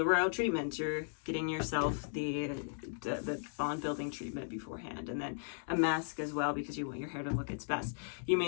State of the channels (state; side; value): silent; right; digital silence